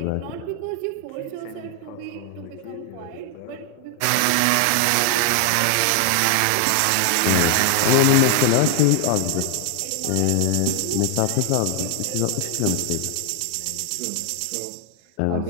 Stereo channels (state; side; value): different; both; correlation 0.00